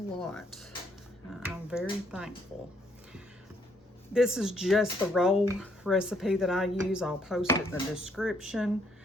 I'm very thankful. This is just the roll recipe that I use. I'll post it in the description.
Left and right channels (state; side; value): normal; both; correlation 0.69